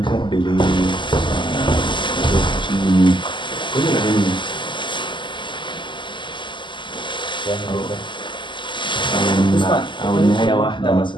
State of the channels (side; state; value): right; late; 0.23 ms